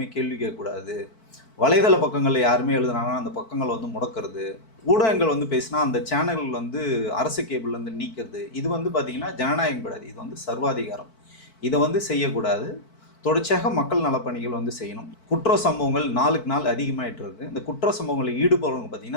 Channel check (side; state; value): right; late; 4.5 ms